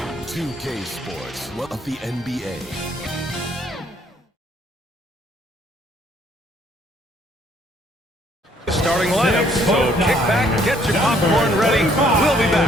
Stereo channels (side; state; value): both; normal; correlation 0.64